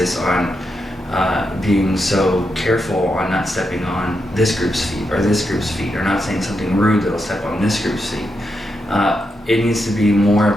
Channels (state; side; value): normal; both; correlation 0.84